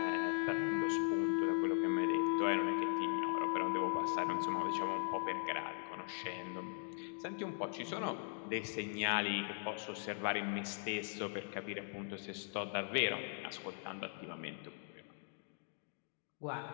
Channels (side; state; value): right; silent; 51 dB below the other